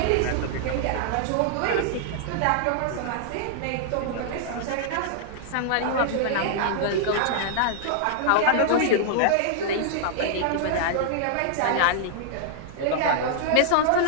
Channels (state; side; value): different; both; correlation -0.01